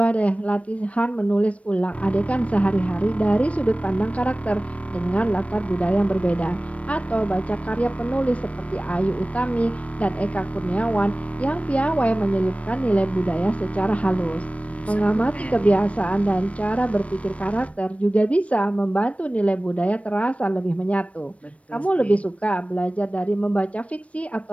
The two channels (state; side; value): late; right; 0.064 ms